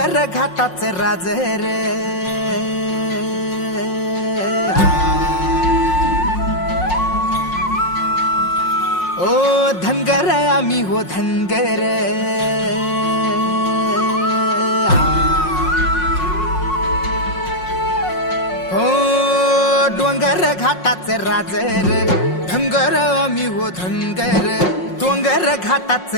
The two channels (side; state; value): right; late; 5.5 ms